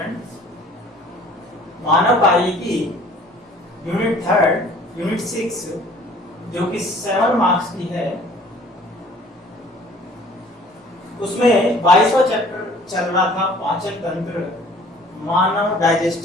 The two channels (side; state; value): both; normal; correlation 0.52